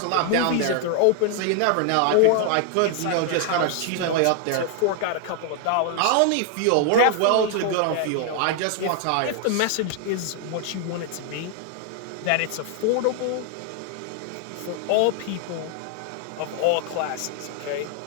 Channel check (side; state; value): both; different; correlation 0.00